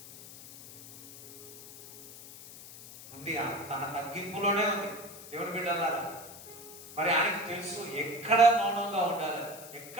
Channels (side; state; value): left; noise; hiss, 16 dB below the sound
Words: ఉంది, తన తగ్గింపులోనే ఉంది. దేవుని బిడ్డలారా, మరి ఆయనకు తెలుసు ఎక్కడ మౌనంగా ఉండాలి,